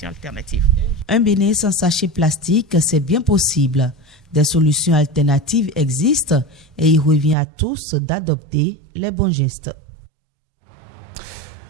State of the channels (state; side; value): drops out; left; at 7.4 s